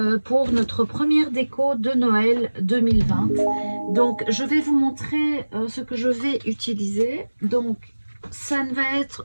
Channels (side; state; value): both; inverted; correlation -1.00